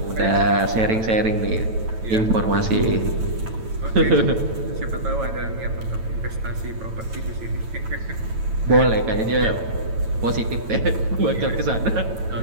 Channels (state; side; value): late; left; 9.1 ms